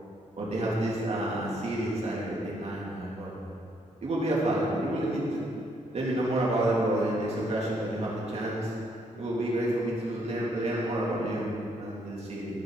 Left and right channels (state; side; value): normal; both; correlation 0.71